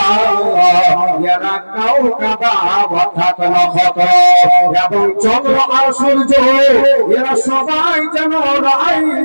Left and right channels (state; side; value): inverted; both; correlation -1.00